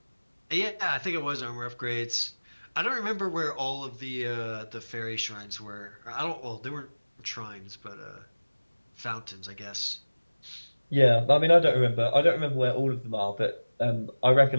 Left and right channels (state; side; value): inverted; both; correlation -1.00